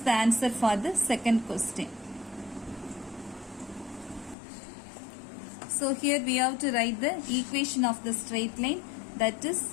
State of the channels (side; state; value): right; drops out; at 4.4 s